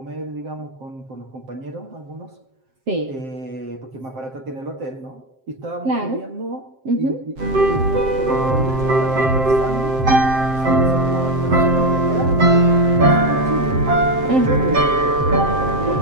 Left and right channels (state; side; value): late; left; 7.6 ms